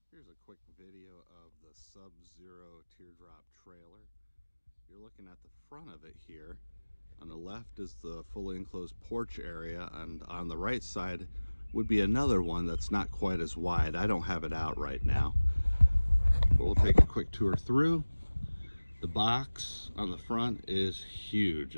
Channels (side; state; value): both; inverted; correlation -1.00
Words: Here's a quick video of the Sub-Zero Teardrop trailer. You're looking at the front of it here. On the left is the fully enclosed porch area, and on the right side would be another one that's not quite as wide. I don't have it out right now, but we'll take a quick tour through. The box on the front is huge.